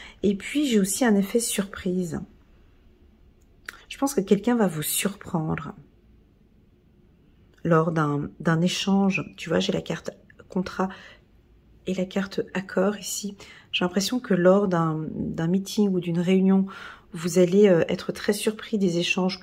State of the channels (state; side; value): identical; both; correlation 1.00